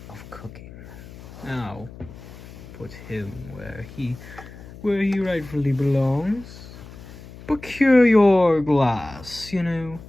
of cooking. Now, put him where he rightfully belongs. Procure your glass, you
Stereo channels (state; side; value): noise; left; hum, 16 dB below the sound